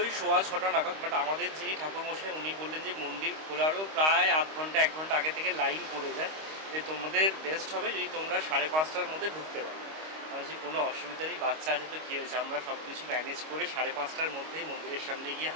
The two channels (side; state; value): left; late; 25 ms